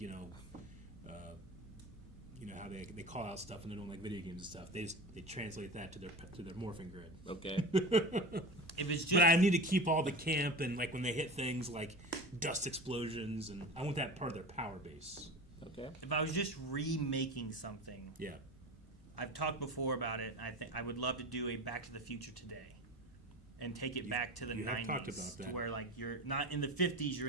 how they call out stuff and they're doing video games and stuff. They translate that to their morphing grid. Okay. But I need to keep all the camp and when they hit things like dust explosions, and I want that part of their power base. Okay. If I was just remaking something, yeah, I've talked before about it. I think I would love to do a Back to the Future today, and take it back to the 90s, talked about that. To where you're not in the 50s, you're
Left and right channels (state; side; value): normal; both; correlation 0.30